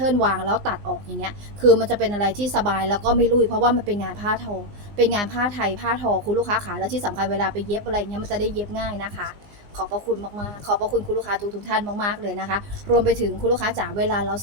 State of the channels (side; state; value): left; late; 20 ms